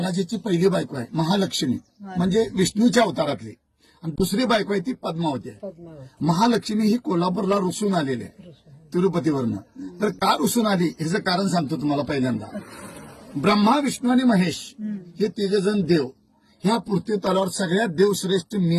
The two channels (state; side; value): identical; both; correlation 1.00